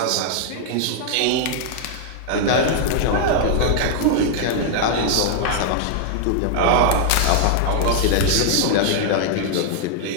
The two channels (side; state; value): both; different; correlation 0.00